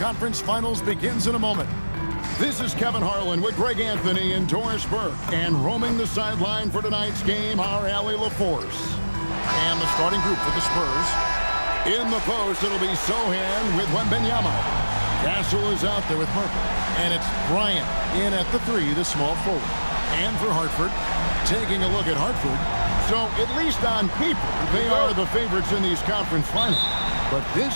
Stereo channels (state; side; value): inverted; both; correlation -1.00